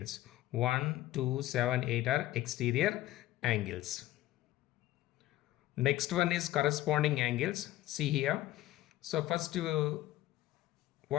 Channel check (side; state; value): right; quieter; 15.6 dB